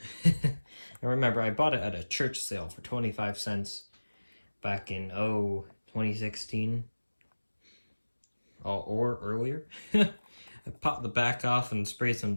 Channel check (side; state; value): both; inverted; correlation -1.00